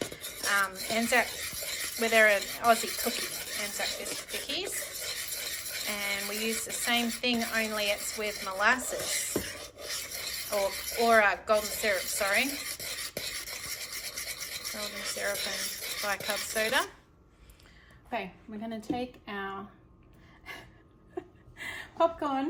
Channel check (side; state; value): both; identical; correlation 1.00